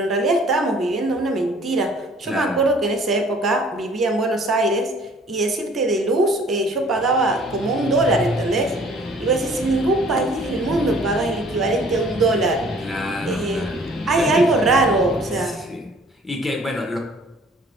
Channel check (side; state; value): both; normal; correlation 0.54